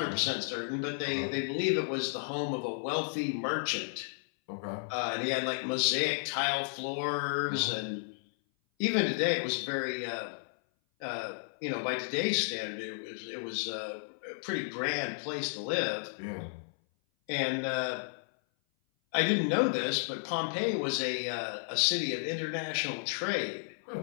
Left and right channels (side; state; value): right; silent; 56 dB below the other